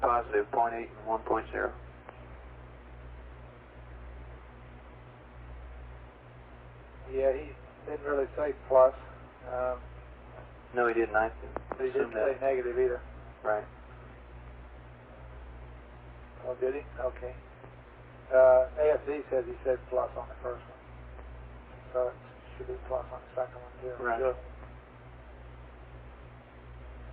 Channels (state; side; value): identical; both; correlation 1.00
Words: positive, 0.8 and 1.0. Yeah, he didn't really say plus. No, he didn't. But he didn't say negative either. Right. Oh, did he? Okay. AFD says he said plus on the first one. So it should be plus on the second one too. Right. Sure.